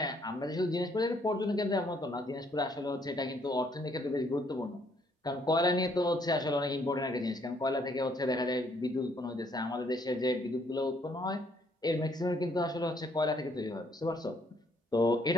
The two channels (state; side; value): normal; both; correlation 0.67